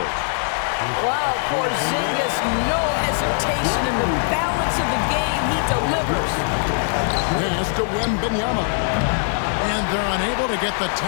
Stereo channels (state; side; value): silent; right; digital silence